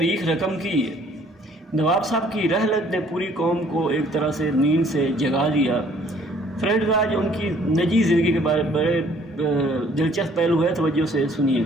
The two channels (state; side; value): normal; both; correlation 0.59